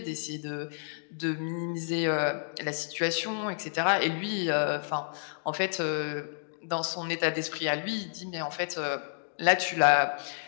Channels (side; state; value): right; silent; digital silence